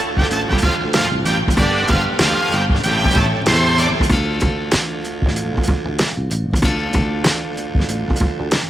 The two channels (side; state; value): both; normal; correlation 0.90